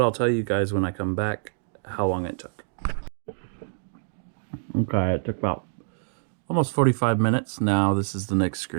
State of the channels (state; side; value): silent; left; digital silence